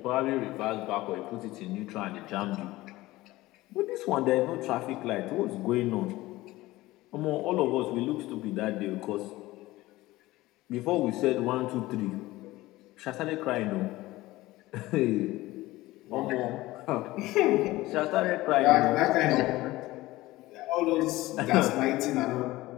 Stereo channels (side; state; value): right; quieter; 18.3 dB